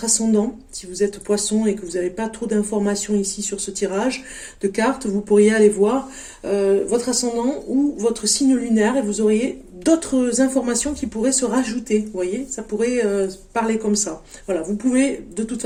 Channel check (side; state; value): both; identical; correlation 1.00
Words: ascendant. Si vous êtes poisson et que vous n'avez pas trop d'informations ici sur ce tirage de cartes, vous pourriez aller voir votre ascendant ou votre signe lunaire et vous auriez d'autres informations qui pourraient se rajouter. Vous voyez, ça pourrait parler comme ça. Voilà, vous pouvez de toute